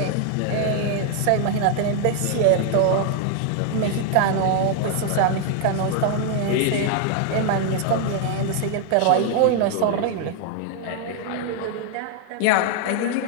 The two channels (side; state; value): both; different; correlation 0.00